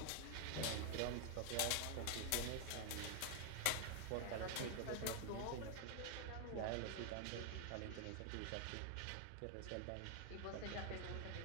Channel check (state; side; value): different; both; correlation 0.00